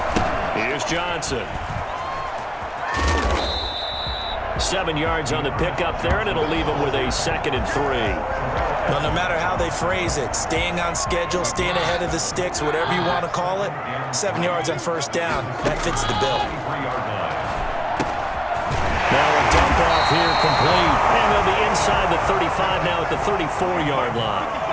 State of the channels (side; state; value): both; identical; correlation 1.00